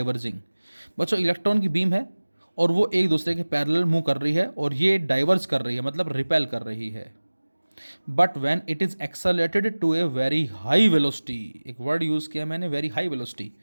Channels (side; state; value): both; inverted; correlation -1.00